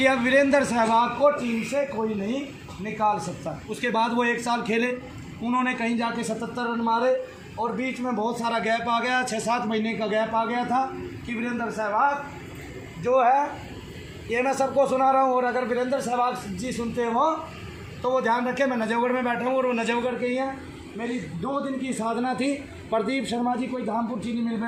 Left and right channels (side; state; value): both; identical; correlation 1.00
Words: अब वीरेंद्र सहवाग को टीम से कोई नहीं निकाल सकता। उसके बाद वो 1 साल खेले, उन्होंने कहीं जाके 77 रन मारे और बीच में बहुत सारा गैप आ गया, 6-7 महीने का गैप आ गया था कि वीरेंद्र सहवाग जो है, ये मैं सबको सुना रहा हूँ और अगर वीरेंद्र सहवाग जी सुनते हो तो वो ध्यान रखें, मैं नजफगढ़ में बैठा हूँ और वो नजफगढ़ के ही हैं। मेरी 2 दिन की साधना थी, प्रदीप शर्मा जी कोई धामपुर चीनी मिल में